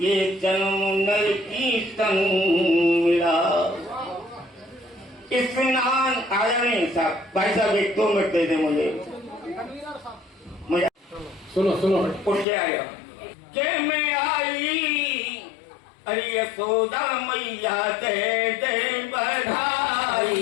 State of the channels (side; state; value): right; drops out; at 12.5 s